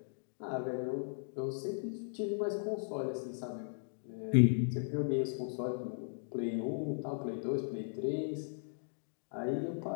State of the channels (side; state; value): right; silent; digital silence